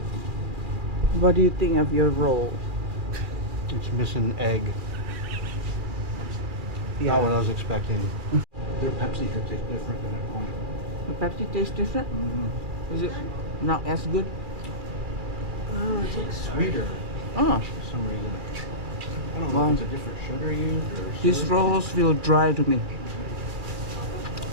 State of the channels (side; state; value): left; late; 2.4 ms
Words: What do you think of your roll? It's missing egg. Yeah. Not what I was expecting. Their Pepsi here tastes different than at home. The Pepsi tastes different? Mm-hmm. Is it not as good? It's like sweeter Oh, for some reason. I don't know Wow. if it's a different sugar used or these syrup. rolls feel dry to me.